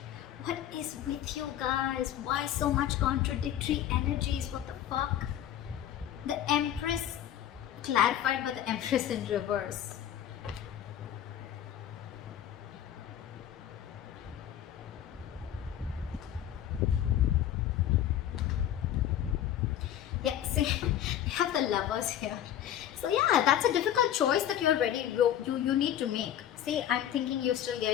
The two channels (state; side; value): quieter; right; 11.0 dB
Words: What is with you guys? Why so much contradictory energies? What the fuck? The Empress clarified by the Empress in reverse. Yeah, see, you have the Lovers here. So yeah, that's a difficult choice that you're ready, you need to make. See, I'm thinking you're still